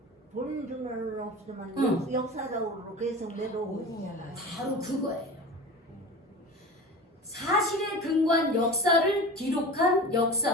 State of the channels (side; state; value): both; normal; correlation 0.33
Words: 보는 줄은 없지만 응. 역사적으로 계속 내려오고 있잖아요. 바로 그거예요. 사실에 근거한 역사를 기록한